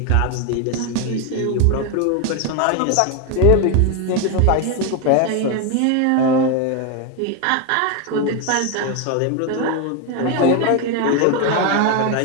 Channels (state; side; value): different; both; correlation 0.02